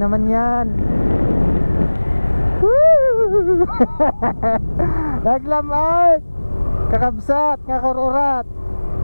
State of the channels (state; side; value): inverted; both; correlation -1.00